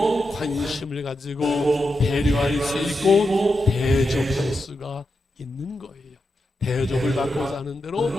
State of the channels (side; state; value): both; normal; correlation 0.87